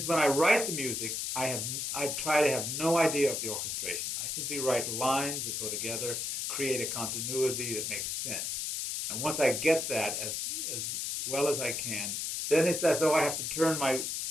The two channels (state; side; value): noise; left; hiss, 2 dB below the sound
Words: when I write the music, I try to have no idea of the orchestration. I simply write lines that go together, create a continuity that makes sense. And once I get that as well as I can, then it's as though I have to turn my